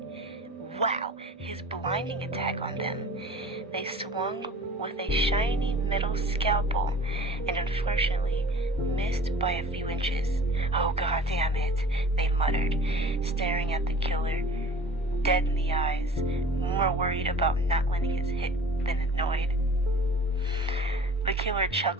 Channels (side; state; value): both; normal; correlation 0.43